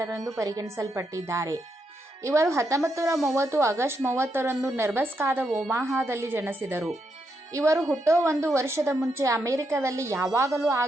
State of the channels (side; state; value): both; normal; correlation 0.81